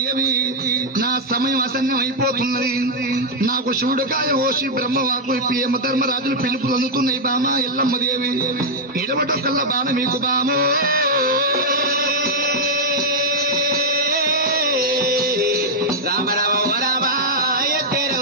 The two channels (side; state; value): both; normal; correlation -0.03